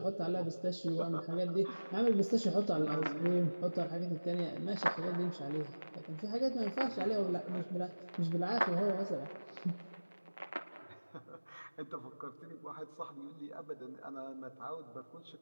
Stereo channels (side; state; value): both; inverted; correlation -1.00